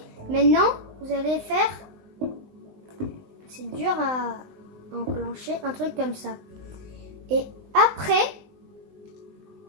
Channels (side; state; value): left; late; 20 ms